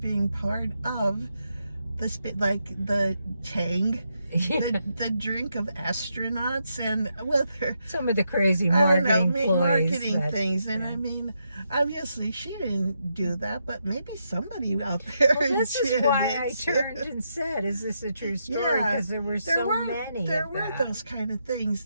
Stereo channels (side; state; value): both; inverted; correlation -0.81